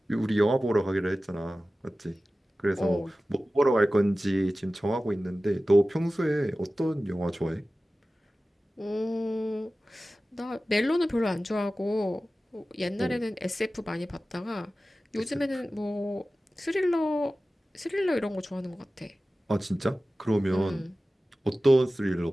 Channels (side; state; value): both; normal; correlation 0.96